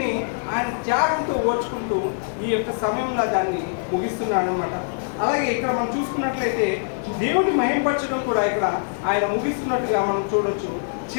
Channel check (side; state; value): right; silent; digital silence